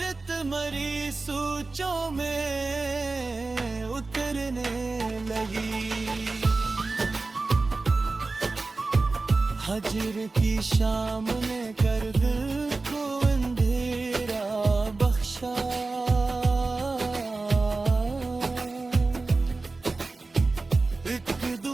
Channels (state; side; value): quieter; left; 3.6 dB